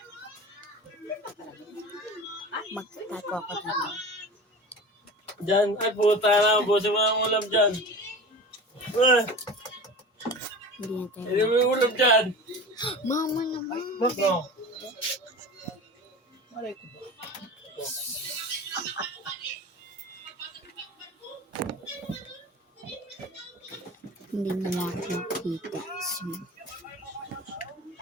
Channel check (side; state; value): both; normal; correlation 0.34